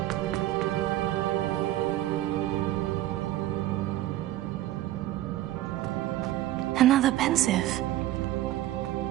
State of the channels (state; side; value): quieter; left; 14.5 dB